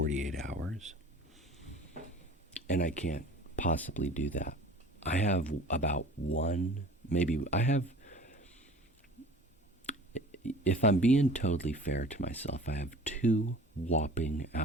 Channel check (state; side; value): normal; both; correlation 0.44